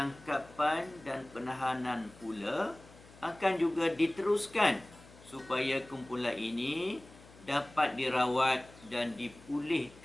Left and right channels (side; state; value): left; noise; hum, 22 dB below the sound